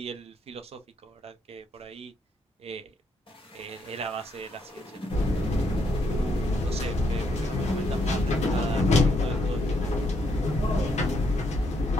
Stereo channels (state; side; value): normal; both; correlation 0.75